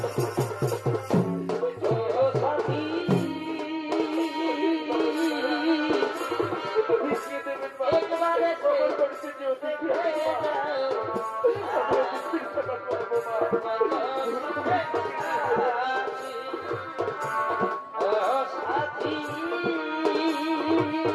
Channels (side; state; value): both; identical; correlation 1.00